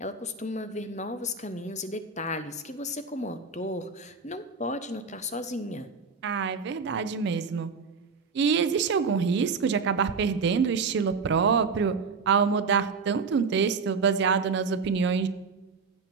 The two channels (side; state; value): left; quieter; 4.9 dB